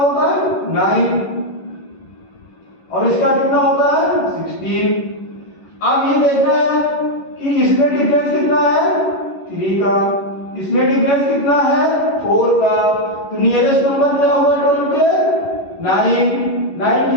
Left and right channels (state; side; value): late; right; 11 ms